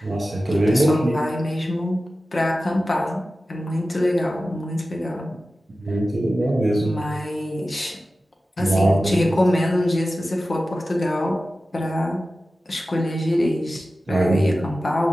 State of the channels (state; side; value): normal; both; correlation 0.94